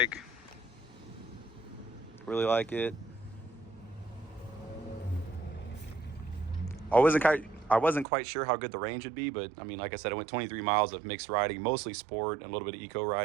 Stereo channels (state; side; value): drops out; left; at 8.1 s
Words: Really like it. I wasn't quite sure how good the range would be, but I mean, like I said, I went 23 miles of mixed riding, mostly sport and a little bit of eco